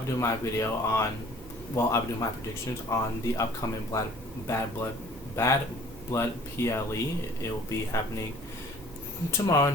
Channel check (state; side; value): noise; right; hum, 19 dB below the sound